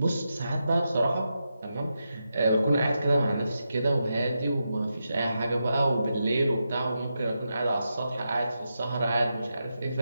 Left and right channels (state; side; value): inverted; both; correlation -0.87